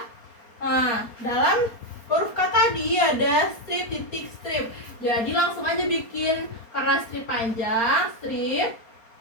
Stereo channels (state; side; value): late; right; 4.3 ms